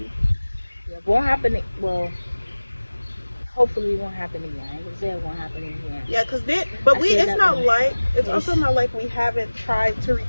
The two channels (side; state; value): both; inverted; correlation -1.00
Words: Yeah, it won't happen. Well, hopefully it won't happen again. I ain't gonna say it won't happen again. Yeah, it's also not like we haven't tried to